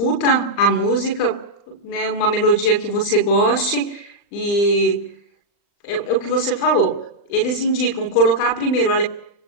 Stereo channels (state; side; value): late; right; 39 ms